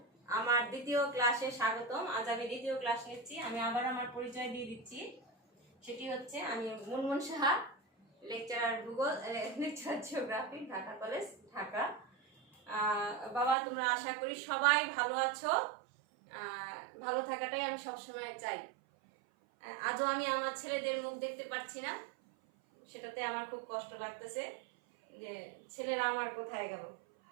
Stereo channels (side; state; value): left; drops out; at 13.6 s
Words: আমার দ্বিতীয় ক্লাসে স্বাগতম। আজ আমি দ্বিতীয় ক্লাস নিচ্ছি। আমি আবার আমার পরিচয় দিয়ে দিচ্ছি। সেটি হচ্ছে আমি মুনমুন সাহা, লেকচারার ভূগোল, lecturer geography, Dhaka college, Dhaka. বাবা, তোমরা আশা করি সবাই ভালো আছো। ভালো থাকাটাই আমি সবসময় চাই। আজও আমি আমার ছেলেদের মুখ দেখতে পাচ্ছি না, সেটাতে আমার খুব কষ্ট লাগতেছে যে ছেলেরা আমার কোথায় গেল।